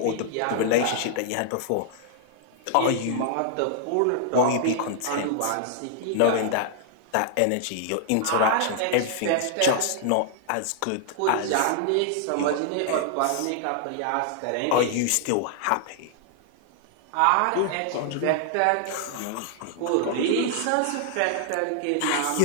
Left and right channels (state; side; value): different; both; correlation -0.01